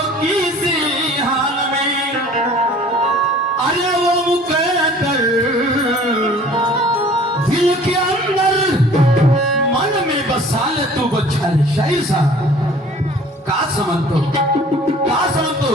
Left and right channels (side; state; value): both; normal; correlation 0.49